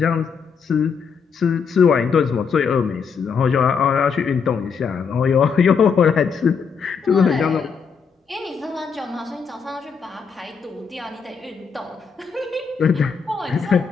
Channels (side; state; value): right; quieter; 6.0 dB